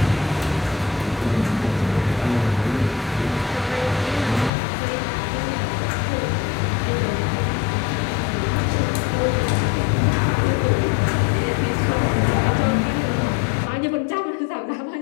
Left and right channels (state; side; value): drops out; right; at 4.5 s